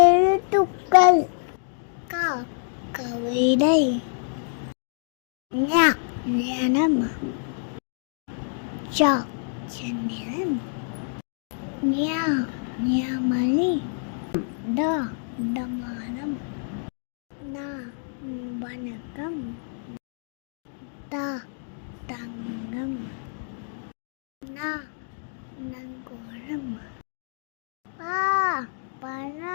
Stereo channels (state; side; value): silent; right; 60 dB below the other